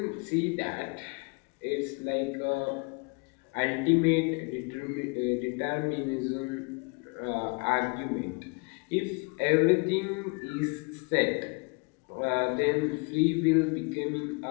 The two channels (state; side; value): quieter; right; 32.4 dB